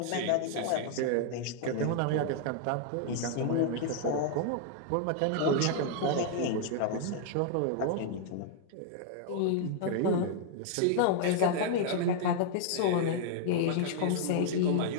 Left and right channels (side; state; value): both; different; correlation -0.01